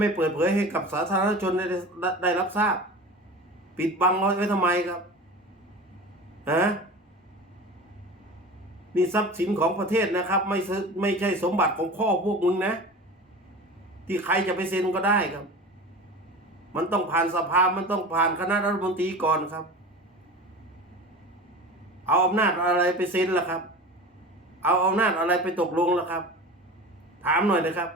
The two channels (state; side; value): normal; both; correlation 0.34